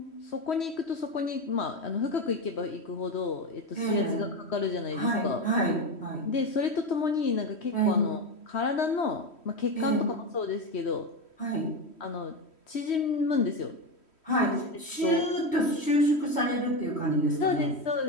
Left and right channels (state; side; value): late; right; 3.1 ms